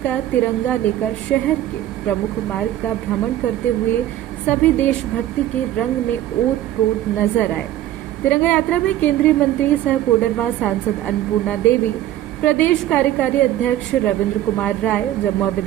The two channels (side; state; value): left; quieter; 13.1 dB